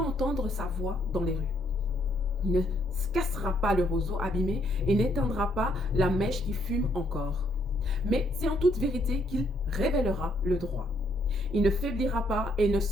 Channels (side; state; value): both; normal; correlation 0.71